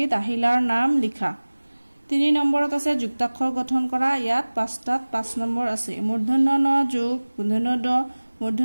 আহিলাৰ নাম লিখা 3 নম্বৰত আছে যুক্তাক্ষৰ গঠন কৰা ইয়াত 5টাত 5 নম্বৰ আছে মূৰ্ধন্য ন যোগ মূৰ্ধন্য ড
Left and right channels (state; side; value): inverted; both; correlation -1.00